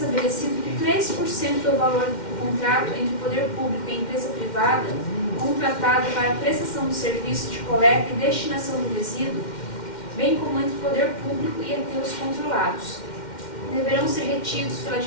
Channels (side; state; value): right; late; 2.1 ms